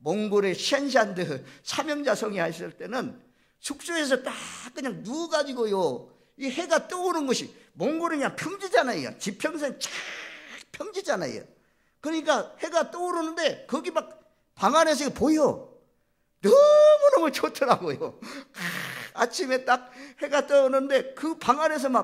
셴샨드 사명자성이 하실 때는 숙소에서 딱 그냥 누워가지고요, 이 해가 떠오르는 것이, 몽골은 그냥 평지잖아요. 지평선 쫙 평지잖아요. 그러니까 해가 떠오르는데 거기 막 방 안에서 보여. 너무너무 좋더라고요. 아침에 딱 해가 떠오르는데 그 방 안에서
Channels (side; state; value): both; identical; correlation 1.00